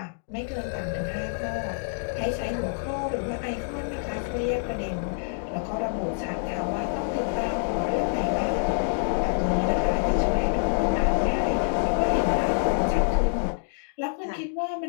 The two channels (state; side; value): silent; right; digital silence